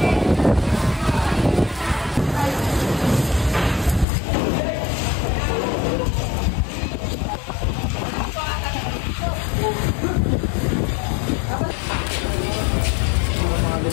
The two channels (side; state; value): right; drops out; at 4.0 s